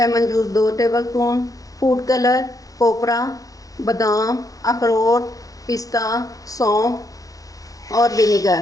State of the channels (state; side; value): late; right; 0.17 ms